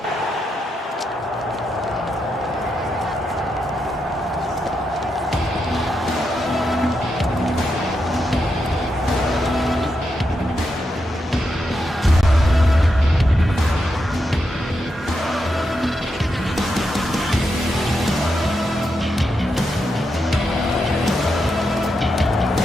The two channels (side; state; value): both; normal; correlation 0.84